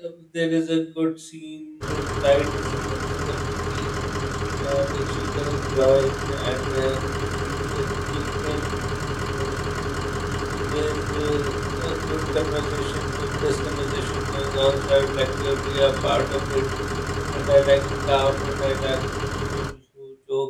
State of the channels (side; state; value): both; identical; correlation 1.00